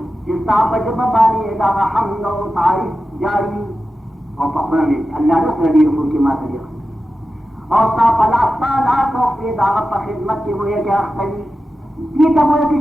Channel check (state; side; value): normal; both; correlation 0.93